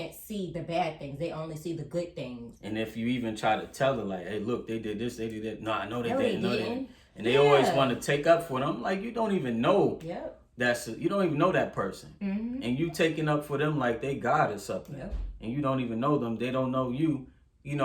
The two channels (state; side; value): identical; both; correlation 1.00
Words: see the bad things. They only see the good things. And if you even try to tell them, like, hey, look, they did this, they did that. No, I know they didn't. No, they didn't. And they always want to take up for them. Like, you don't even know. You don't even know that person. And you taking up for them like they God or something. And you don't even know them. They don't know you.